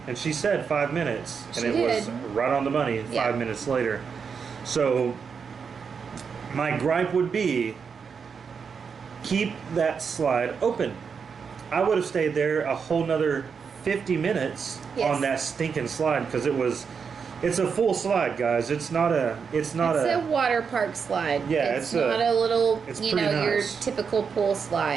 and she said 5 minutes, and it was right on the money 5 minutes later. So my gripe would be, keep that slide open. I would have stayed there a whole nother 50 minutes on that stinking slide, because it's a full slide, guys. It's a water park slide. Yeah, it's not a little, you know, nice. your typical pool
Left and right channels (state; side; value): quieter; left; 6.1 dB